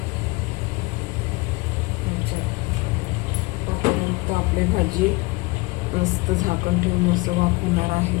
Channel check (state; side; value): quieter; right; 24.0 dB